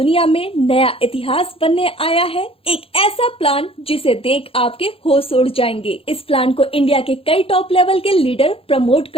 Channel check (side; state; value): right; late; 0.27 ms